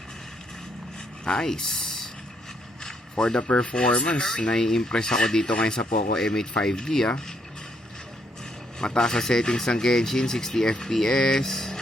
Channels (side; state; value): both; normal; correlation 0.74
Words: Nice. For the performance, nai-impress ako dito ngayon sa Poco M8 5G Mataas sa settings ng Genshin, 60 FPS.